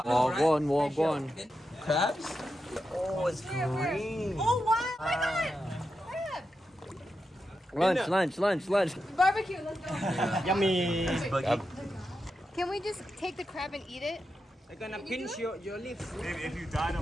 Walk on. Crabs? Oh, it's green. Oh wow! My God! Crab. Lunch. Barbecue. Let's go. Yummy. Can we just take the crab and eat it? I'm gonna pinch your lips. If you die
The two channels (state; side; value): normal; both; correlation 0.88